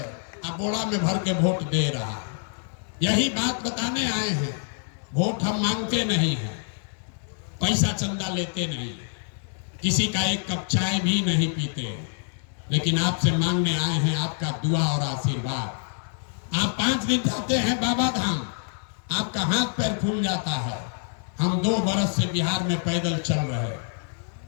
और बोरा में भर के वोट दे रहा है। यही बात बताने आए हैं। वोट हम मांगते नहीं हैं, पैसा चंदा लेते नहीं, किसी का एक कप चाय भी नहीं पीते, लेकिन आपसे मांगने आए हैं आपका दुआ और आशीर्वाद। आप 5 दिन जाते हैं बाबा धाम, आपका हाथ पैर फूल जाता है। हम 2 बरस से बिहार में पैदल चल रहे हैं।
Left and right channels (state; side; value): silent; right; 61 dB below the other